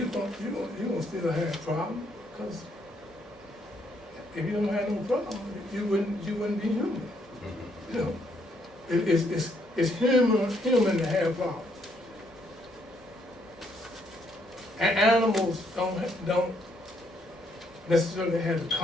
gonna still have a problem, because if you don't have no problem, you wouldn't be human. It's human to have problems. And animals don't necessarily have the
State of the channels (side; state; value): both; normal; correlation 0.72